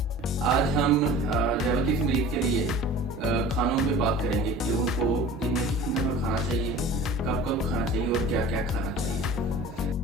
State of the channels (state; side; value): normal; both; correlation 0.41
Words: आज हम डायबिटीज मरीज के लिए खानों पे बात करेंगे कि उनको दिन में कितनी दफ़ा खाना चाहिए, कब कब खाना चाहिए और क्या क्या खाना चाहिए।